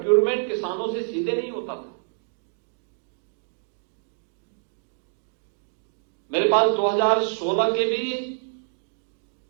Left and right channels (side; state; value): left; silent; digital silence